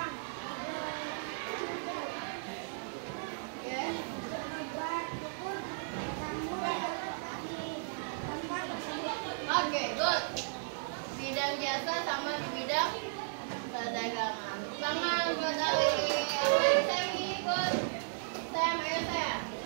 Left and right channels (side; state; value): left; silent; 54 dB below the other